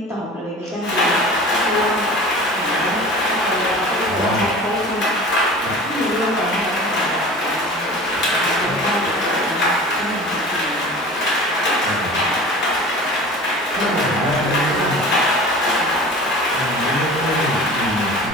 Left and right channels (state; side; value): normal; both; correlation 0.39